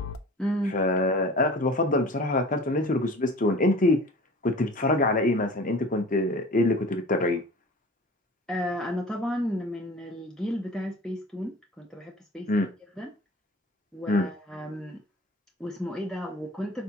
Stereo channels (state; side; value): normal; both; correlation 0.41